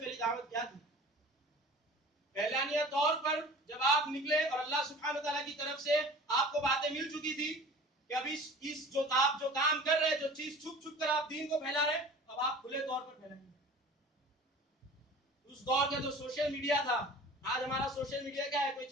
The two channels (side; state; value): both; normal; correlation 0.42